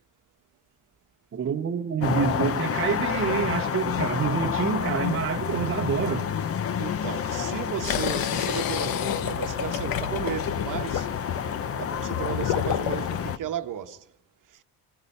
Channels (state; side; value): normal; both; correlation 0.07